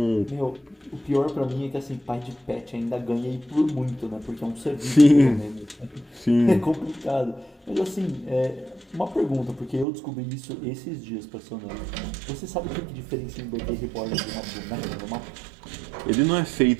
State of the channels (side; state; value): left; drops out; at 9.9 s